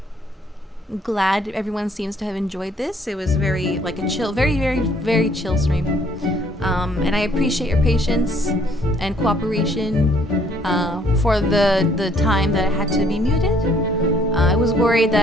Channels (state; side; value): normal; both; correlation 0.63